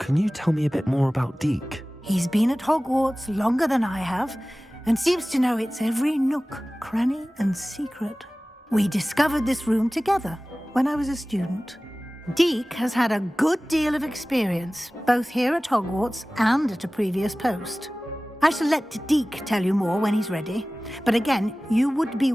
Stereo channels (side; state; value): both; normal; correlation 0.98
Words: you tell me a bit more about Deek? He's been at Hogwarts longer than I have, and seems to know its every nook, cranny, and secret. We discovered this room together when I was a student. Deek has had a good deal of experience, both here at Hogwarts and at a previous post. I shall let Deek tell you more when he's ready, but again, you would be